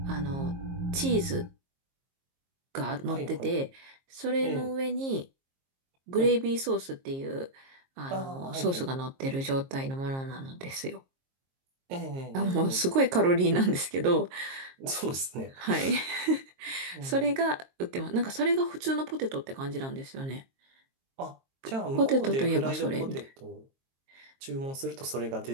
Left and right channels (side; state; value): left; late; 22 ms